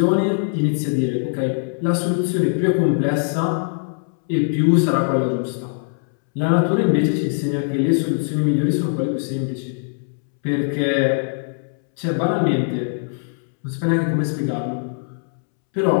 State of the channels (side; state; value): right; silent; 65 dB below the other